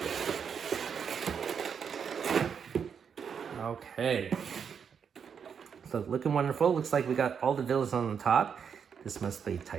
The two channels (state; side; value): quieter; left; 7.0 dB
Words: Okay, so looking wonderful. Looks like we got all the villains on the top. This must be